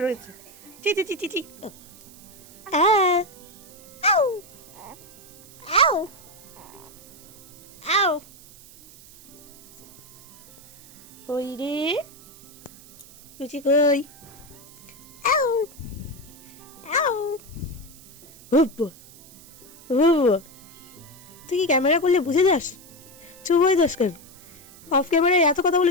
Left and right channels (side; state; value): right; noise; hiss, 21 dB below the sound